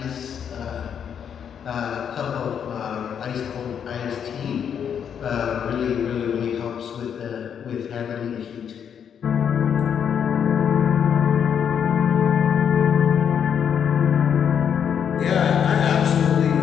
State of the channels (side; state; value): right; quieter; 8.0 dB